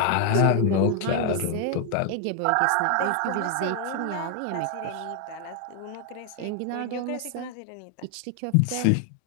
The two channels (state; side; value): different; both; correlation 0.01